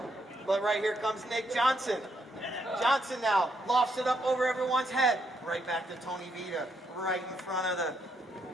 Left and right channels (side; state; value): both; normal; correlation 0.76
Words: But right here comes Nick Johnson. Johnson now lofts it up over everyone's head. Right back to Tony Vita. Right in front of the